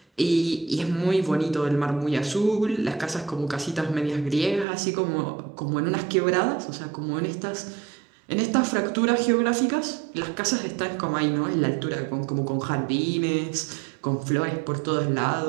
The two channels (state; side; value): drops out; left; at 4.7 s